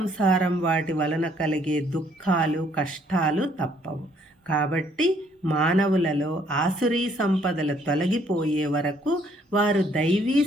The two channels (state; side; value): normal; both; correlation 0.65